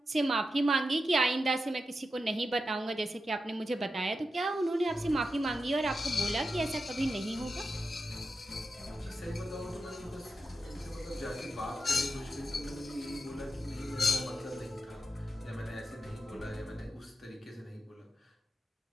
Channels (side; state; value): both; normal; correlation 0.89